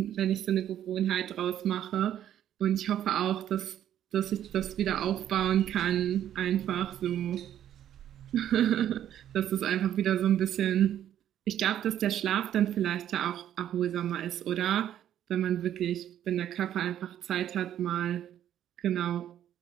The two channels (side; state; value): left; quieter; 10.9 dB